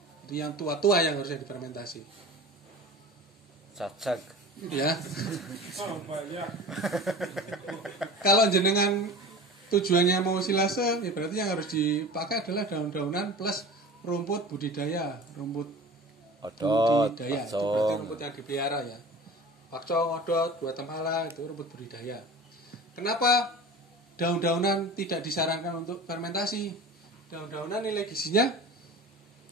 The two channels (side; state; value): both; normal; correlation 0.36